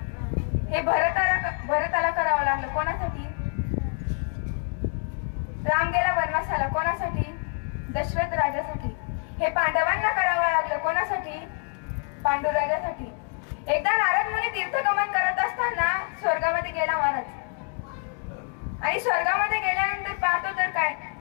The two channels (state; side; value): quieter; right; 36.7 dB